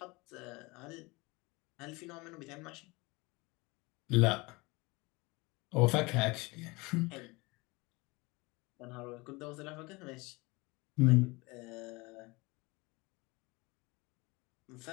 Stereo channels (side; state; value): right; quieter; 24.6 dB